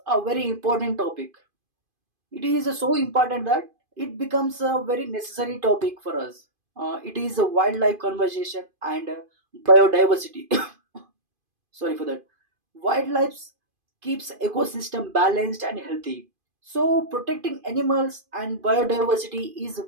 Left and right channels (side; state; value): left; late; 2.5 ms